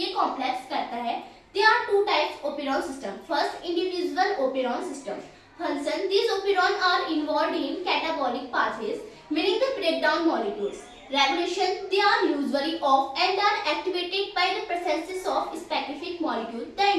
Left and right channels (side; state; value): both; identical; correlation 1.00